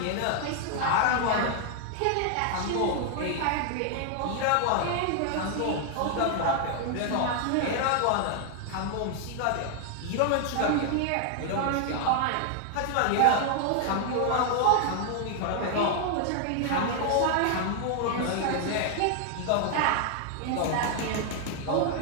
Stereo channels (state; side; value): different; both; correlation 0.00